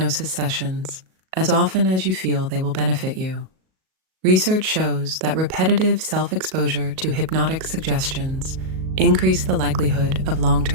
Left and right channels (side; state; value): left; late; 38 ms